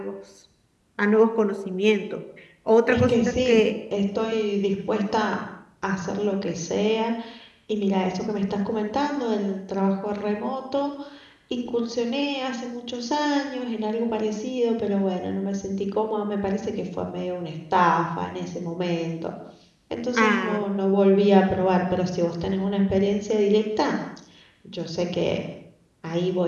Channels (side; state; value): both; identical; correlation 1.00